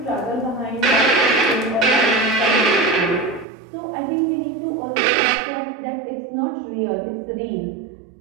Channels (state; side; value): drops out; left; at 3.5 s